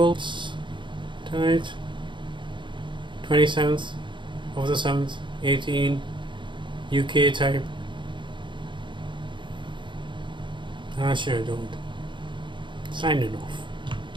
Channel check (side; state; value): left; late; 0.23 ms